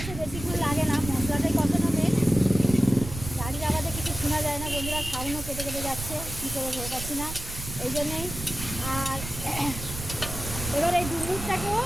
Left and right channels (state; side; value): noise; right; rumble, 9 dB below the sound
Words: বেশিক্ষণ লাগে না, মশলাটাই কষানো মেন। গাড়ির আওয়াজে কিছু শোনা যায় না বন্ধুরা, সাউন্ডও কেটে কেটে যাচ্ছে, কী করে ভেবে পাচ্ছি না, এই জন্যেই। আর এবার এই ডুমুরটাকেও